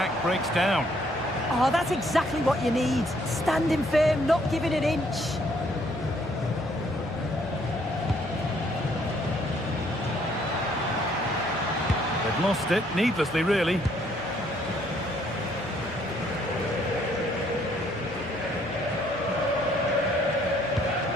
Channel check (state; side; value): noise; left; hum, 17 dB below the sound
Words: breaks down. Oh, that's exactly what you need. Standing firm, not giving an inch. They've lost it, needlessly, really.